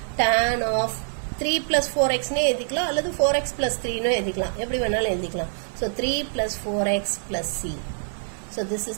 tan of 3 plus 4xனே எழுதிக்கலாம், அல்லது 4x plus 3னு எழுதிக்கலாம், எப்படி வேணாலும் எழுதிக்கலாம். So 3 plus 4x plus c. So this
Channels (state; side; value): silent; left; 62 dB below the other